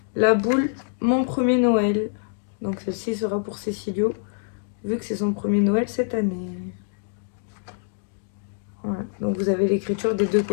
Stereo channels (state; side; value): silent; right; digital silence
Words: la boule Mon Premier Noël. Donc celle-ci sera pour Cécilio, vu que c'est son premier Noël cette année. Voilà. Donc vous avez l'écriture des deux